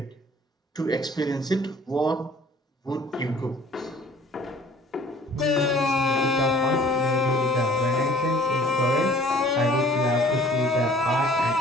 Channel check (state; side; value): normal; both; correlation 0.52